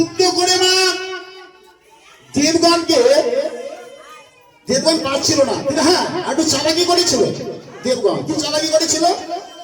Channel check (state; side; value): identical; both; correlation 1.00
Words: করে মা দেবগণকে, দেবগণ পারছিল না, কিন্তু হ্যাঁ একটু চালাকি করেছিল। দেবগণ কি চালাকি করেছিল?